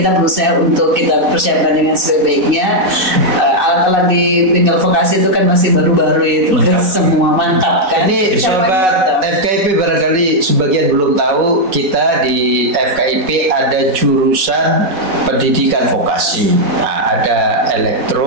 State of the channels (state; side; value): late; left; 4.1 ms